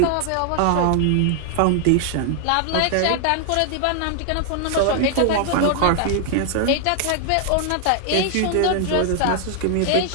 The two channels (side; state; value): both; different; correlation 0.00